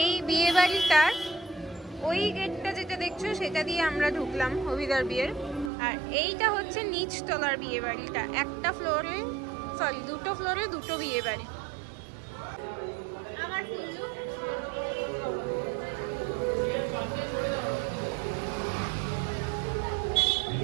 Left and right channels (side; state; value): left; drops out; at 5.7 s